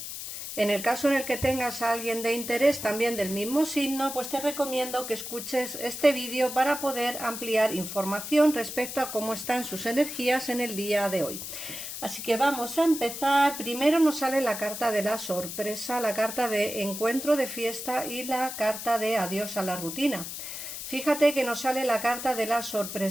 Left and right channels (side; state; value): left; noise; hiss, 8 dB below the sound